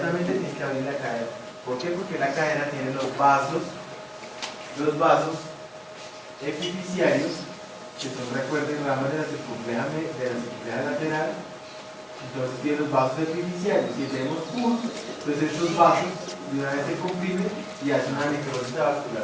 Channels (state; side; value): identical; both; correlation 1.00